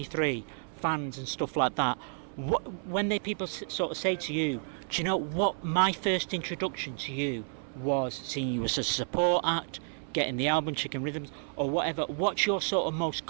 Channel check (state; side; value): silent; left; 56 dB below the other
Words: fans and stuff like that, when people sort of say to you, do you know what? My first introduction to you was seeing you as a support act, getting the album Chicken Rhythms or whatever. What's your sort of most